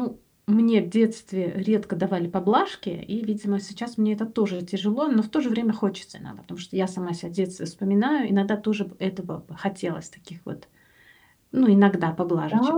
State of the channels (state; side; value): identical; both; correlation 1.00